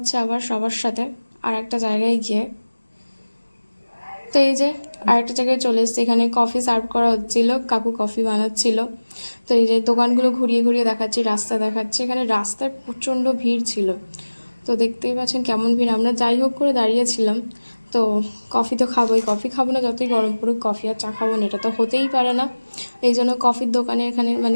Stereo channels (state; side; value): inverted; both; correlation -1.00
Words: আবার সবার সাথে আর একটা জায়গায় গিয়ে। তো এই যে আরেকটা জায়গায় চলে এসেছি, এখানে কফি সার্ভ করা হচ্ছিলো, কাকু কফি বানাচ্ছিল। তো এই যে দোকানগুলো ঘুরিয়ে ঘুরিয়ে দেখাচ্ছি, রাস্তা দেখাচ্ছি। এখানে রাস্তায় প্রচণ্ড ভিড় ছিল। তো দেখতেই পাচ্ছেন কেমন ভিড়। আমরা যাই হোক করে দাঁড়িয়েছিলাম। তো কফি তো খাবোই, কফি খাবো না যতই গরম পড়ুক, কফি আর চা খাবো না, এটা তো হতেই পারে না। এই জন্য কফির দোকানে এখানে